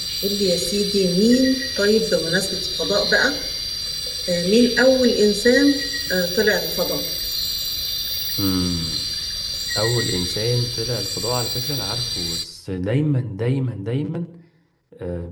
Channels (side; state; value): both; identical; correlation 1.00